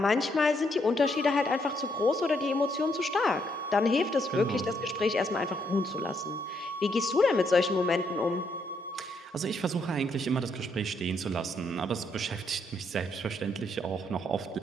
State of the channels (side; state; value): both; normal; correlation 0.74